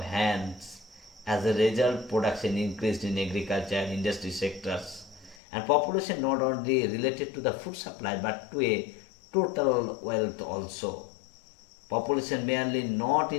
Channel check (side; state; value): right; drops out; at 5.4 s